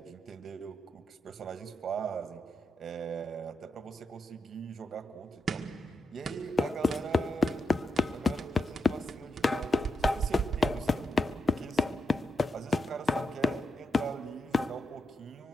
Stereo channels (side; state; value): both; normal; correlation 0.87